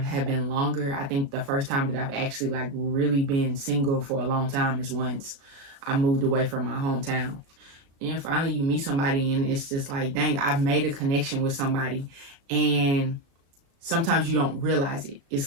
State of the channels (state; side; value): late; left; 36 ms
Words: have been longer. I think the first time that I've actually like really been single for a long time is once I moved away from my hometown. And finally you meet somebody and it's just like, dang, I've made a connection with somebody, And sometimes you don't realize it.